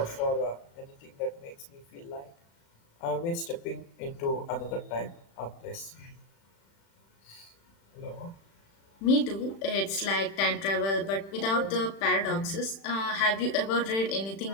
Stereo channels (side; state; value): right; late; 36 ms